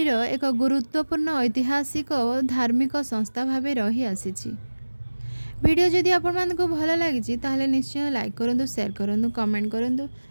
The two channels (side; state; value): both; inverted; correlation -1.00